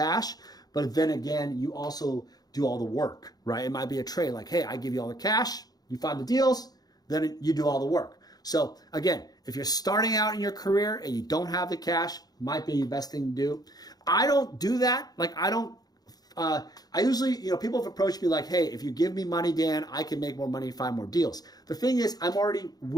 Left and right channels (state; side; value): late; right; 0.19 ms